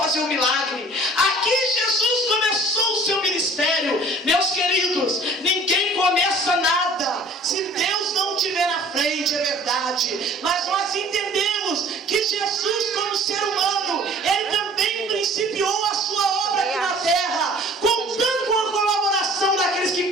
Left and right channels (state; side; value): normal; both; correlation 0.49